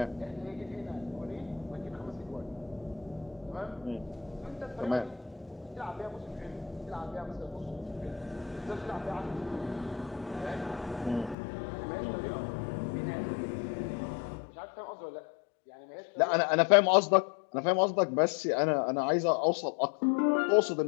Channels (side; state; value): right; drops out; at 11.4 s